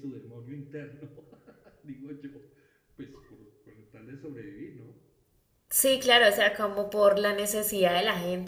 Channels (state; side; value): identical; both; correlation 1.00